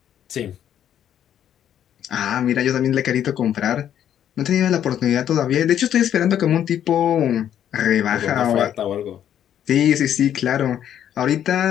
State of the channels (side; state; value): right; quieter; 10.2 dB